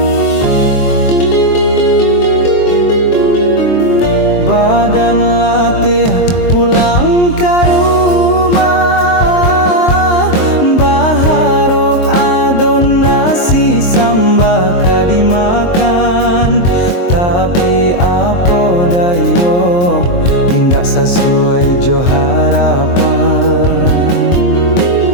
Badan latih pulang ke rumah, baharok adon nasi sambaka dimakan. Tapi apa dayo, indak sesuai jo harapan.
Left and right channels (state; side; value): late; right; 23 ms